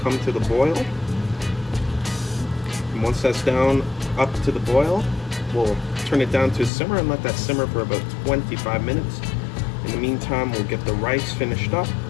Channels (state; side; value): drops out; right; at 6.7 s